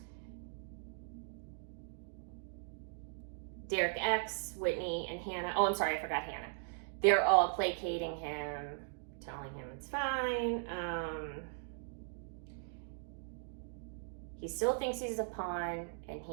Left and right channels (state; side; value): silent; left; digital silence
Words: Derek X, Whitney, and Hannah, oh, I'm sorry, I forgot Hannah. They're all placating him, telling him it's fine. He still thinks he's a pawn, and